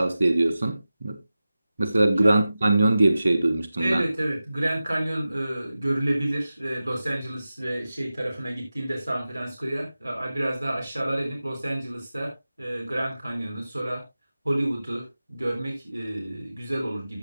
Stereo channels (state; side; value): inverted; both; correlation -0.94